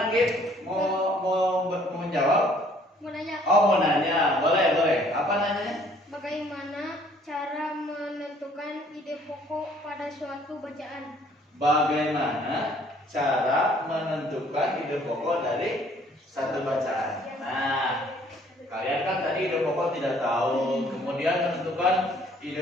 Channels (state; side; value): normal; both; correlation 0.59